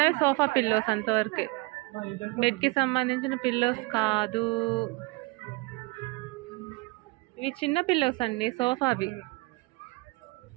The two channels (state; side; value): quieter; left; 25.6 dB